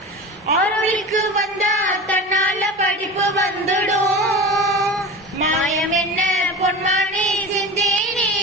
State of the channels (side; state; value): both; normal; correlation 0.31